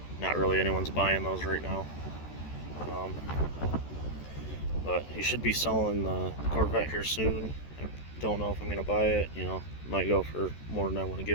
Not really anyone's buying those right now. But he should be selling the Corvette here soon. I don't know if I'm going to buy it, you know, might go for more than I want to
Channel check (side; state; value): right; late; 14 ms